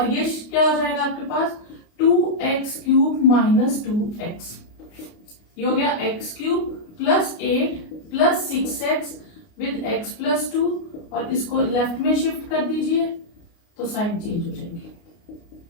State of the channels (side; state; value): right; late; 29 ms